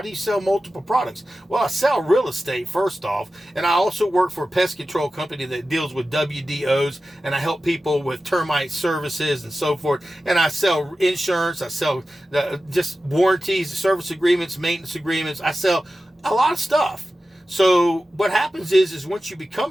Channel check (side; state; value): both; normal; correlation 0.94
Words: do you sell multiple products? Well, I sell real estate, first off, and I also work for a pest control company that deals with WDOs, and I help people with termite services and so forth. And I sell insurance. I sell just warranties, service agreements, maintenance agreements. I sell a lot of stuff. So what happens is once you